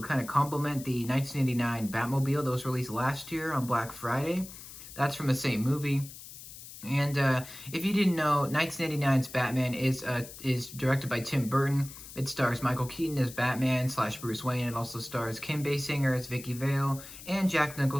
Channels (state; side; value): noise; left; hiss, 15 dB below the sound